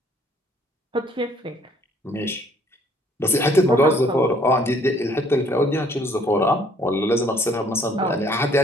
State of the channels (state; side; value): normal; both; correlation 0.61